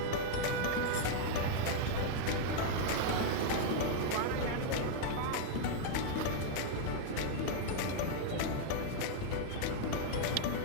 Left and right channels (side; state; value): both; different; correlation 0.00